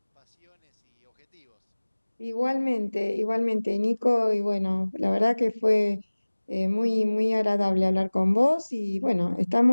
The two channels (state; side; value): inverted; both; correlation -1.00